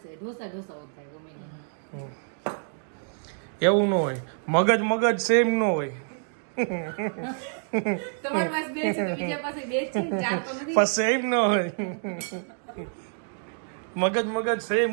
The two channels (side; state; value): left; silent; digital silence